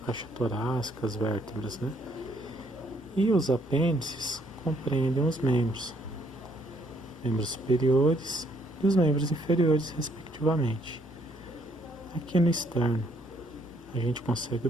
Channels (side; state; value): both; normal; correlation 0.68